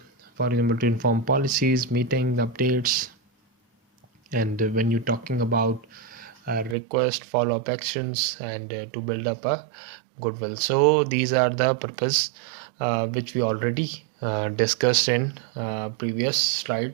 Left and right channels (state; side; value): drops out; left; at 6.8 s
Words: example, to inform policies, meeting, updates, and when you're talking about request, follow-up actions, and to build up a goodwill. So these are the purpose which we already discussed in previous slide.